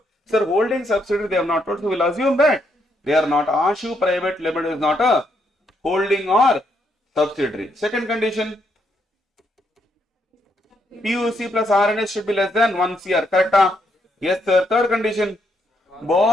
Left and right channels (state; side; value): normal; both; correlation 0.76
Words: Sir, holding subsidiary they have not told, so we will assume that they are not. Ashu Private Limited is not a holding or subsidiary. Second condition, PUC plus RNS should be less than 1 CR. Correct? Yes, sir. Third condition,